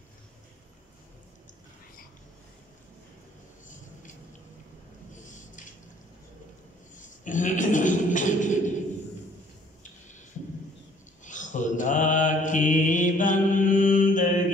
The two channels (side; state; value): both; normal; correlation 0.59